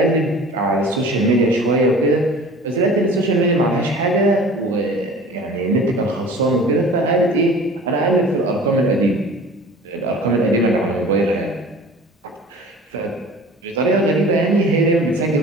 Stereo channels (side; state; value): both; normal; correlation 0.43